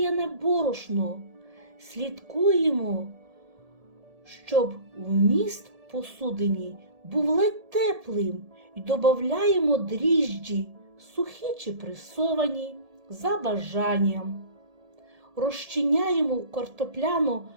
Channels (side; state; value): left; late; 1.7 ms